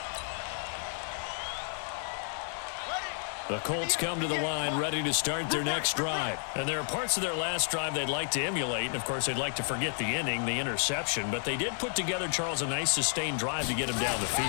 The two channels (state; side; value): silent; right; 57 dB below the other